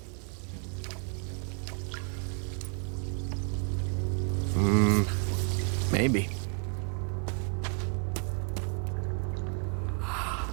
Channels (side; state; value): left; quieter; 37.8 dB